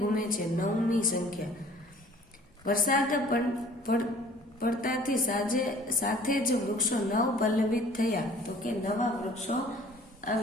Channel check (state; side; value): normal; both; correlation 0.51